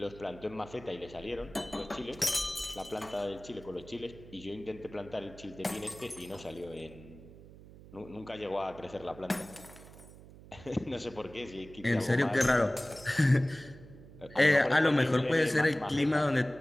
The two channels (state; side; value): noise; right; hum, 19 dB below the sound